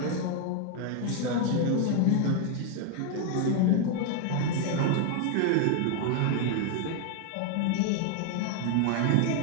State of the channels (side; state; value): both; different; correlation 0.01